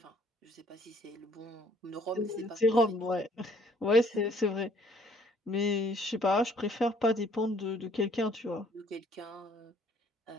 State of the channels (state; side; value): normal; both; correlation 0.60